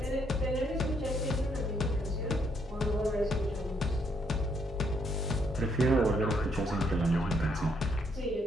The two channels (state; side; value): normal; both; correlation 0.72